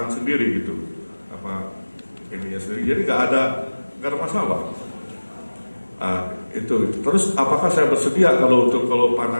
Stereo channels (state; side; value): inverted; both; correlation -1.00